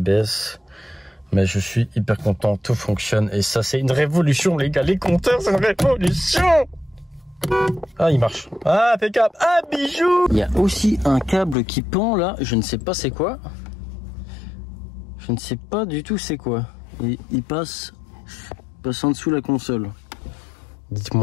Mais je suis hyper content, tout fonctionne. Et ça, c'est une révolution, les gars. Les compteurs, c'est une révolution. Ah, il marche. Ah, impeccable. Ah, bijou. Il y a aussi un câble qui pend là. Je ne sais pas c'est quoi. Je ne sais pas du tout c'est quoi. Il passe en dessous la console.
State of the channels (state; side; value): drops out; right; at 11.6 s